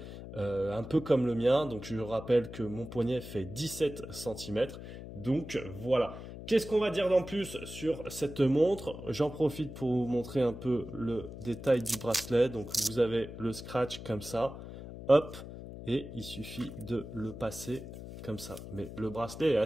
un peu comme le mien. Donc je rappelle que mon poignet fait 17 cm. Donc voilà. Qu'est-ce qu'on va dire d'en plus sur cette montre? J'en profite pour vous montrer un peu le détail du bracelet. Donc vous avez le scratch comme ça, hop, et il suffit de le passer comme ça. Mais le bracelet est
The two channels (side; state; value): left; noise; hum, 11 dB below the sound